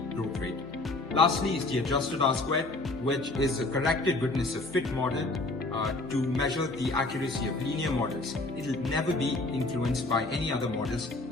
growth rate. Lastly is the adjusted R-squared, which is a corrected goodness of fit model to measure the accuracy of linear models. It will never be influenced by any other models,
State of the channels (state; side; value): quieter; right; 3.0 dB